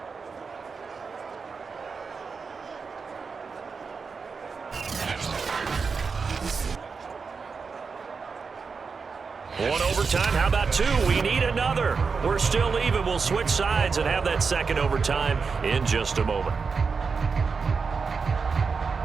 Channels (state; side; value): quieter; left; 5.1 dB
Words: One overtime. How about 2? We need another. We're still even. We'll switch sides and have that 2nd overtime in just a moment.